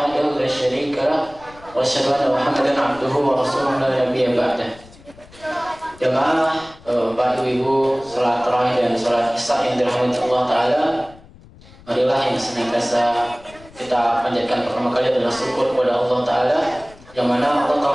la syarika lah wa asyhadu anna Muhammadan abduhu wa rasuluhu la nabiyya ba'dah. Jamaah Bapak Ibu, salat tarawih dan salat isya yang dirahmati Allah Ta'ala, marilah yang senantiasa kita panjatkan pertama kali adalah syukur kepada Allah Ta'ala, yang mana Allah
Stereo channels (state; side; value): noise; left; rumble, 23 dB below the sound